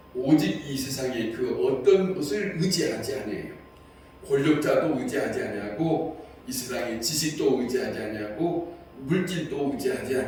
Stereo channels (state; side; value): identical; both; correlation 1.00